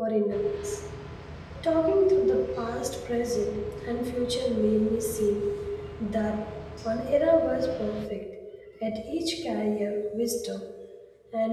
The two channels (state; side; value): identical; both; correlation 1.00